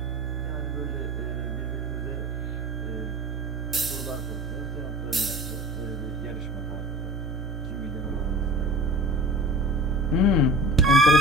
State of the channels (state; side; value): noise; left; hum, 25 dB below the sound